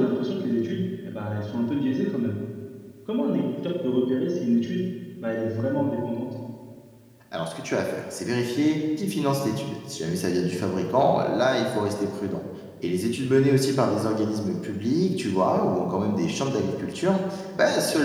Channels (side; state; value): both; identical; correlation 1.00